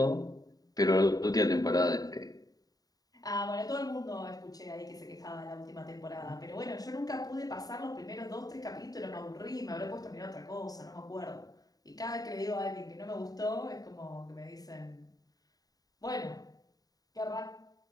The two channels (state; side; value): late; right; 0.18 ms